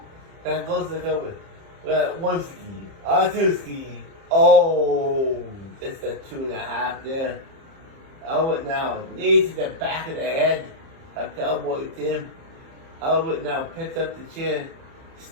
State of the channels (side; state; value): left; late; 30 ms